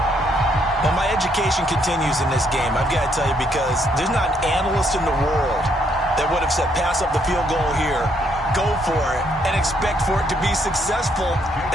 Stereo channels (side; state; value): both; normal; correlation 0.71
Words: Well, my education continues in this game, I've got to tell you, because there's not an analyst in the world that would have said pass up the field goal here, go for it, and expect for it to be successful,